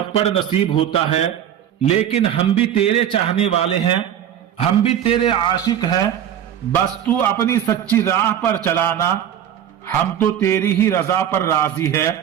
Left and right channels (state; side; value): quieter; left; 10.0 dB